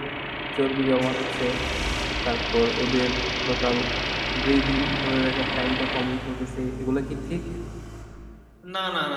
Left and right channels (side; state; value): both; identical; correlation 1.00